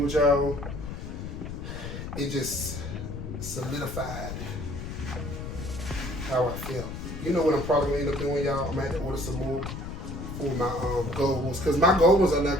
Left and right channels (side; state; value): left; noise; rumble, 7 dB below the sound